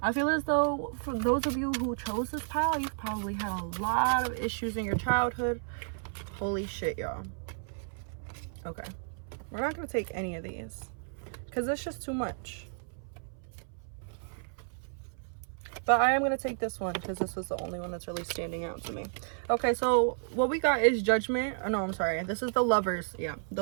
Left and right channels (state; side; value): silent; left; 56 dB below the other